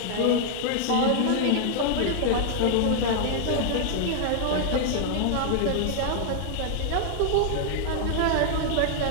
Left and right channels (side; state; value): both; different; correlation -0.01